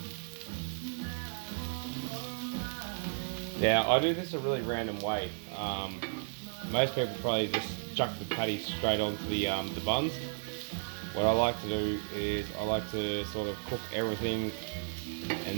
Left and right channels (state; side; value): silent; left; digital silence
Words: Now I do this a really random way. Most people probably just chuck the patty straight onto the buns. What I like to do is I like to sort of cook everything